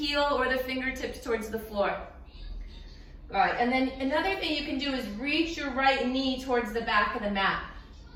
or the fingertips towards the floor. All right, and then another thing you can do is reach your right knee towards the back of the mat.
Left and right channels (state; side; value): identical; both; correlation 1.00